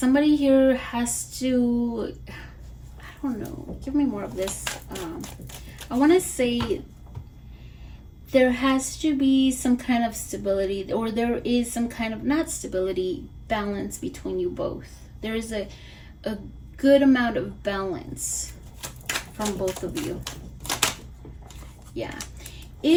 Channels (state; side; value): identical; both; correlation 1.00